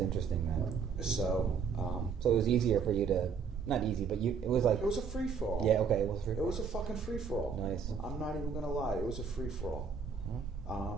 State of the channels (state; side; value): quieter; left; 6.0 dB